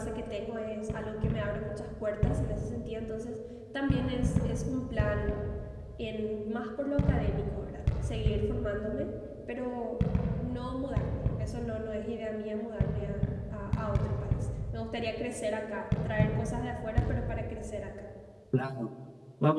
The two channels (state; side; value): identical; both; correlation 1.00